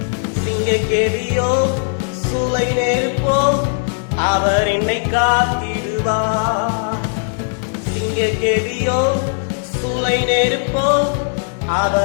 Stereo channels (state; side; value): silent; right; 67 dB below the other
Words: சிங்கக்கேதியோ சூளை நெருப்போ அவர் என்னை காத்திடுவார். சிங்கக்கேதியோ சூளை நெருப்போ